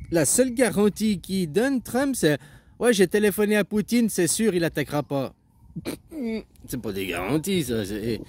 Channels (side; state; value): both; identical; correlation 1.00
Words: la seule garantie qu'il donne, Trump, c'est ouais, j'ai téléphoné à Poutine, c'est sûr, il attaquera pas. C'est pas des garanties, ça.